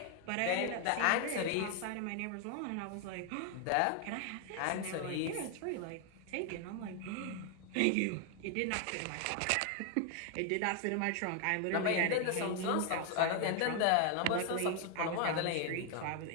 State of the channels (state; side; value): different; both; correlation 0.00